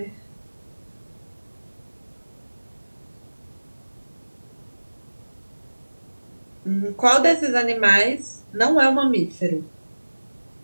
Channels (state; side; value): inverted; both; correlation -1.00